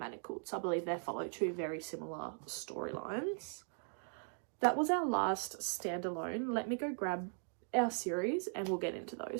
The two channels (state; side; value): silent; left; 52 dB below the other